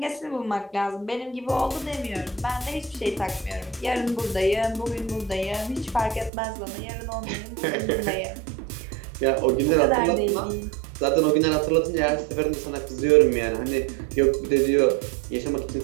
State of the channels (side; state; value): left; drops out; at 6.3 s